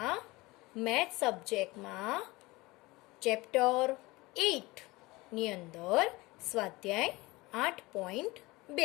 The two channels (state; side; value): quieter; right; 21.7 dB